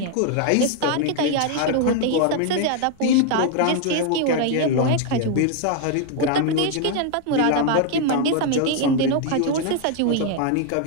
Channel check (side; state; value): both; different; correlation 0.00